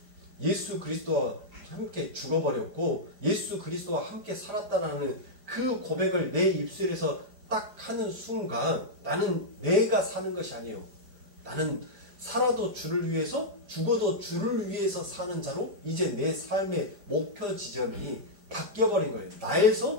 예수 그리스도와 함께 죽어버렸고 예수 그리스도와 함께 살았다라는 그 고백을 내 입술에서 딱 하는 순간 나는 내가 사는 것이 아니에요. 나는 살아도 주를 위해서 죽어도 주를 위해서 사는 자로 이제 내 삶의 목표 지점이 바뀌어버린 거예요.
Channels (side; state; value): left; late; 4.9 ms